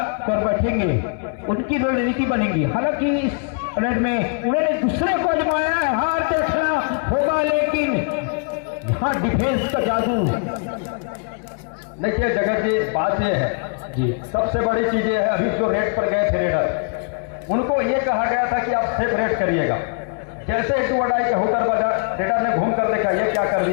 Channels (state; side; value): quieter; right; 39.7 dB